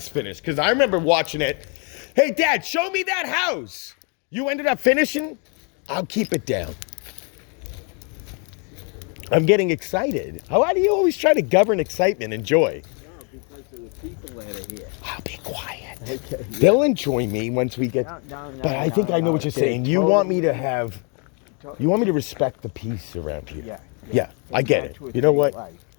finished because I remember watching it. Hey, Dad, show me that house. You ended up finishing? I'll keep it down. I'm getting excited. Why do you always try to govern excitement and joy? No, because of the people that are here. I'll be quiet. Okay. They'll enjoy me once we get. No, But I think I know what you're saying. You want me to have. You want me to respect the peace around here. Yeah. Yeah, I get it. That's what You know they what? like.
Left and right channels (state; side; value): quieter; right; 36.9 dB